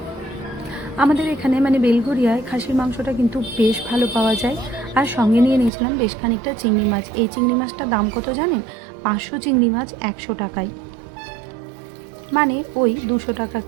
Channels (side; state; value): left; drops out; at 5.7 s